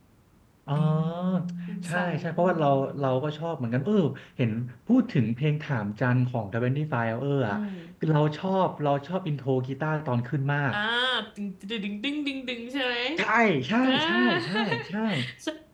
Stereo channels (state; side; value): identical; both; correlation 1.00